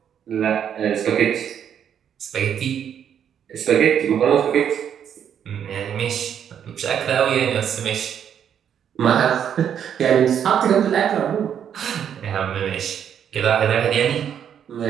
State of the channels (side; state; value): left; quieter; 8.8 dB